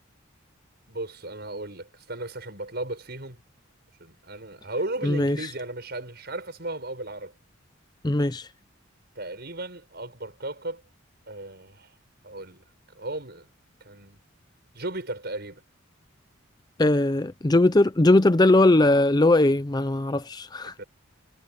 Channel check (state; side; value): normal; both; correlation 0.71